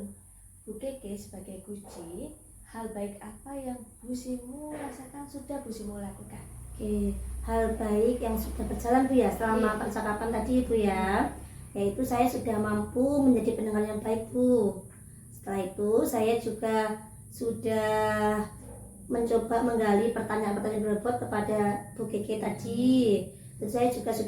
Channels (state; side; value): identical; both; correlation 1.00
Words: Bu Keke sebagai kunci, hal baik apa yang Bu Simu rasakan sudah Bu Simu lakukan? Oke, hal baik yang sudah berjalan Bu ya selama percakapan tadi Bu ya, yaitu saya sudah mampu menjadi pendengar yang baik Bu. Setelah itu saya juga sudah mencoba menggali pertanyaan-pertanyaan berbobot kepada Bu Keke tadi. Dan saya juga